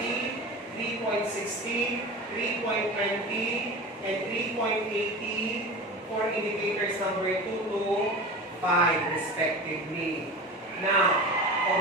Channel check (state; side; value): normal; both; correlation 0.31